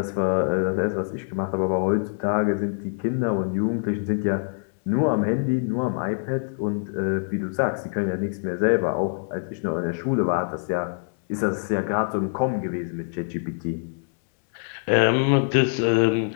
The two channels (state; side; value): silent; right; digital silence